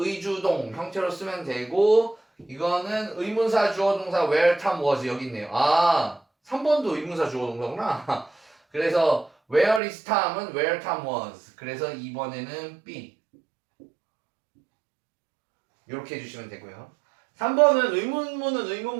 형태로 쓰면 되고 이거는 의문사 주어동사 where Tom was 여기 있네요. 아 3번도 의문사 주어동사구나. 그래서 where is Tom은 where Tom was 그래서 2번에는 B 이렇게 해주시면 되고요. 3번은 의문문은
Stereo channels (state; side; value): drops out; left; at 9.8 s